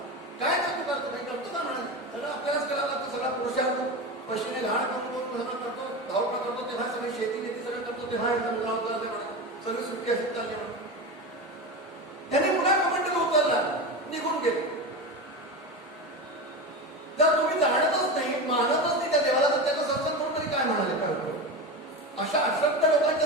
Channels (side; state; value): both; normal; correlation 0.23